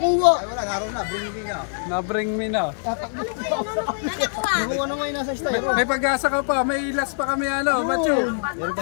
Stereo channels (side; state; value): right; silent; 63 dB below the other